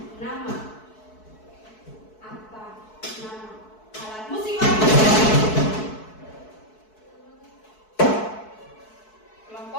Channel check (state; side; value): late; right; 4.6 ms